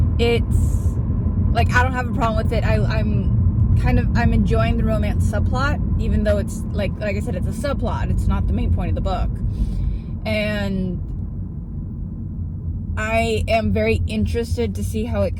it's like, I don't have a problem with it. I'm enjoying the romance subplot, even though it's like I said, it's a subplot. It's not the main point of the book. And I am very interested to see how it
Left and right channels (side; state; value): both; identical; correlation 1.00